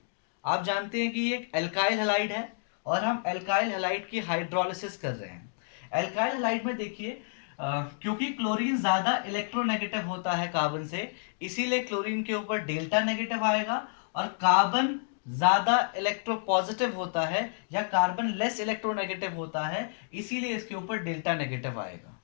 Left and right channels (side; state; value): right; silent; digital silence